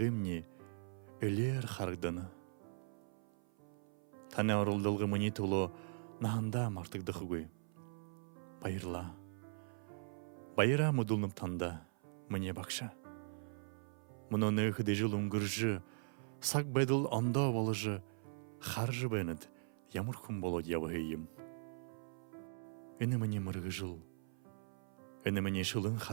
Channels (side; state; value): left; silent; 51 dB below the other